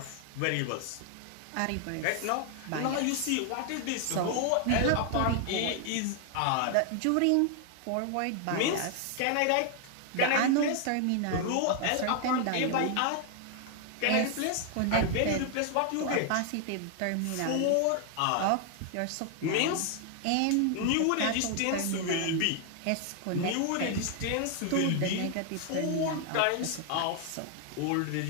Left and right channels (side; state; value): both; different; correlation 0.00